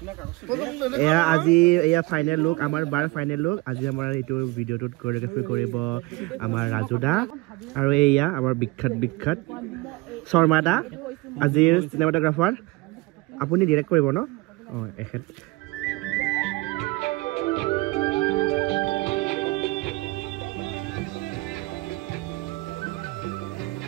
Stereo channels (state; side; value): quieter; left; 22.5 dB